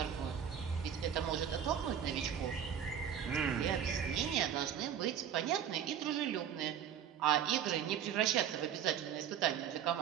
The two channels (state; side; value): quieter; left; 8.9 dB